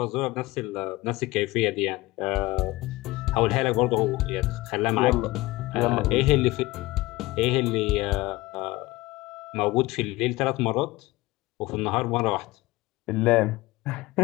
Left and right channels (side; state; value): right; quieter; 19.9 dB